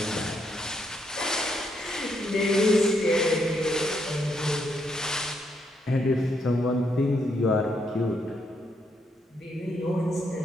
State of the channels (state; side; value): normal; both; correlation 0.76